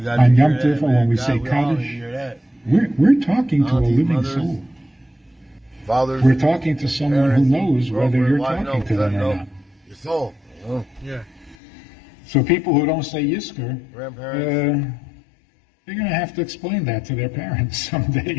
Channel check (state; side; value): drops out; right; at 11.6 s